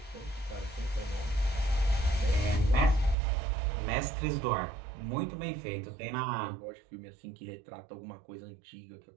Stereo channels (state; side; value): drops out; left; at 3.2 s